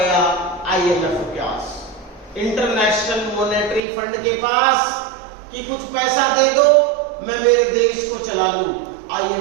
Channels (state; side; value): drops out; left; at 3.8 s